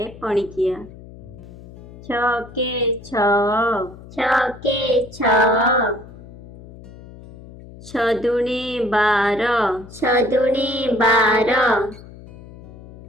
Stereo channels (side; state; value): left; noise; hum, 18 dB below the sound